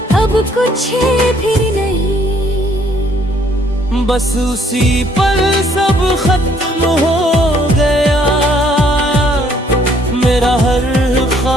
अब कुछ भी नहीं। बस उसी पल सब खत्म हो गया, मेरा हर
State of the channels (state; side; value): normal; both; correlation 0.64